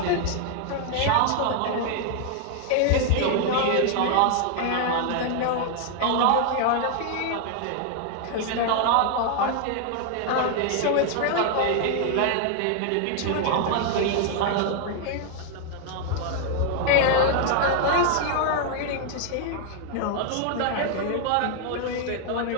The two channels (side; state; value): both; different; correlation 0.00